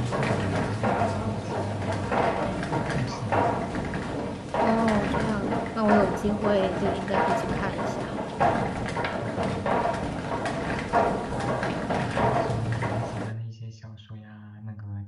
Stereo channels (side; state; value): both; identical; correlation 1.00